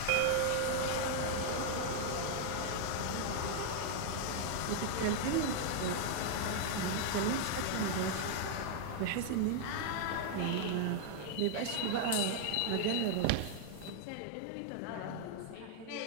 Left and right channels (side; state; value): both; different; correlation 0.00